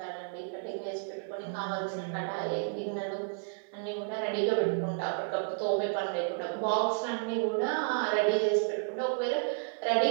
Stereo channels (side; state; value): left; silent; digital silence